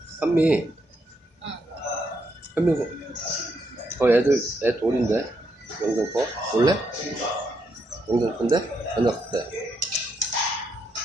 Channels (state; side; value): normal; both; correlation 0.79